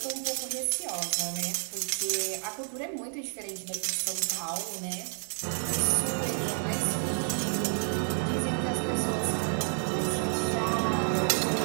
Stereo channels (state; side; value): silent; left; digital silence